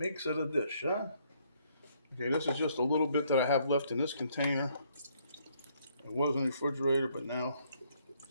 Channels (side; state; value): both; inverted; correlation -0.68